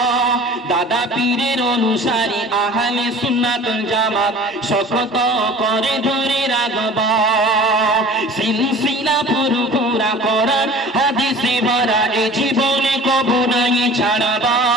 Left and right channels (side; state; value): both; normal; correlation 0.43